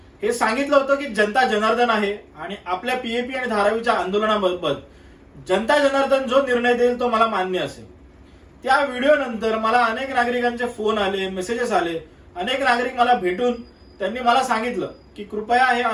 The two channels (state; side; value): identical; both; correlation 1.00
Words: हे सांगितलं होतं की जनता जनार्दन आहे आणि आपल्या पीएपी आणि धारावीच्या आंदोलनाबाबत जनता जनार्दन जो निर्णय देईल तो मला मान्य असेल. त्या व्हिडिओ नंतर मला अनेक नागरिकांचे फोन आले, मेसेजेस आले. अनेक नागरिक मला भेटून त्यांनी मला सांगितलं की कृपया हे